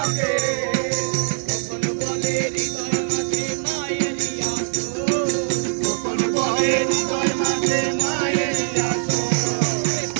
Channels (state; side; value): silent; left; digital silence